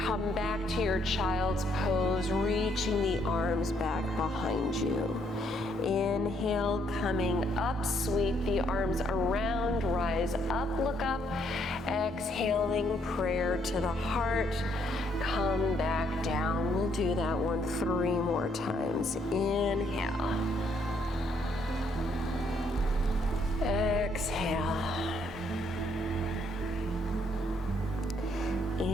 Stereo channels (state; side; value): normal; both; correlation 0.71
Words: back to your child's pose, reaching the arms back behind you. Inhale, coming up, sweep the arms around, rise up, look up. Exhaling, prayer to the heart. Come back down. We'll do that one 3 more times. Inhale. Exhale.